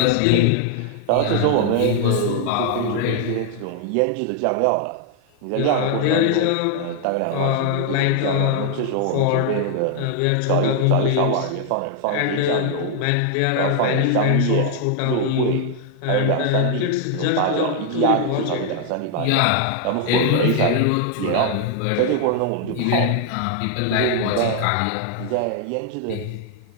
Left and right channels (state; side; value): different; both; correlation 0.00